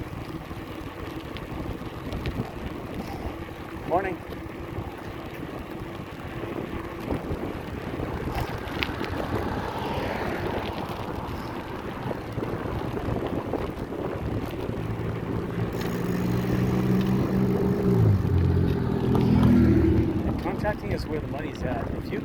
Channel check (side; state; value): both; identical; correlation 1.00